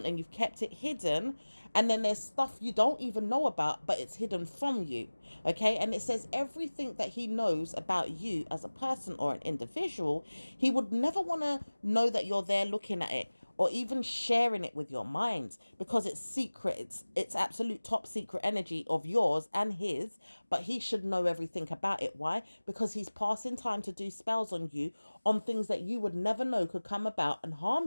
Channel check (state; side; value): inverted; both; correlation -1.00